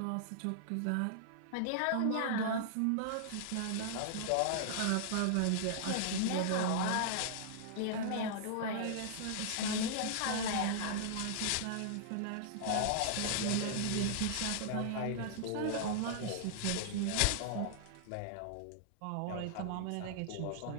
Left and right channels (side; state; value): both; different; correlation -0.01